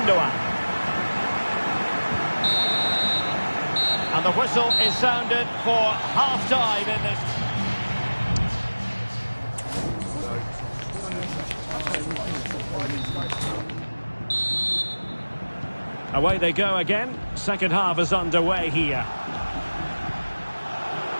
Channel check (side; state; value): both; inverted; correlation -1.00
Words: And the whistle is sounded for half-time in this. Away they go again. Second half is underway here.